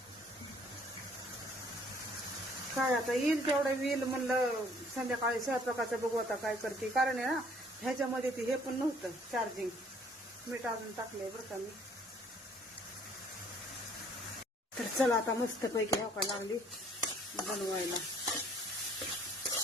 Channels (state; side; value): normal; both; correlation 0.60